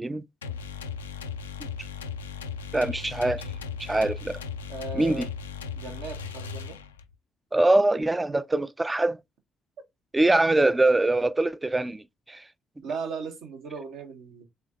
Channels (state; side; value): normal; both; correlation 0.91